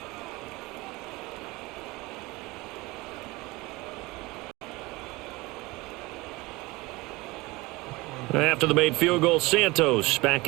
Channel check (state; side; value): quieter; left; 22.3 dB